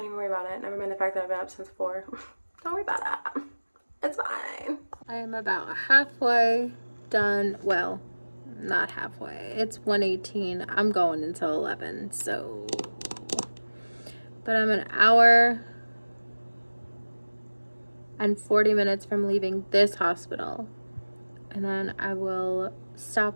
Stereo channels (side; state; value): both; inverted; correlation -1.00